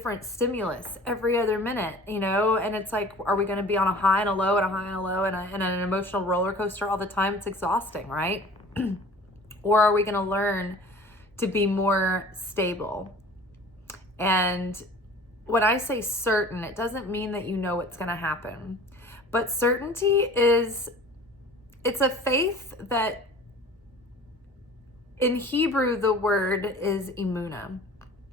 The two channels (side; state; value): both; normal; correlation 0.44